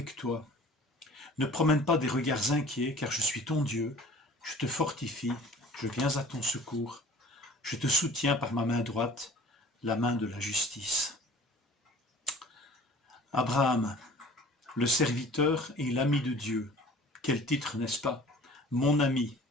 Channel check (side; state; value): both; normal; correlation 0.46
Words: toi. Ne promène pas des regards inquiets, car je suis ton Dieu. Je te fortifie, je viens à ton secours. Je te soutiens par ma main droite, la main de la justice. » Abraham, le serviteur et l'ami de Dieu. Quel titre, n'est-ce pas? Mon ami,